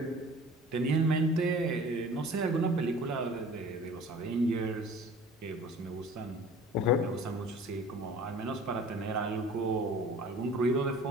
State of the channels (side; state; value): both; normal; correlation 0.45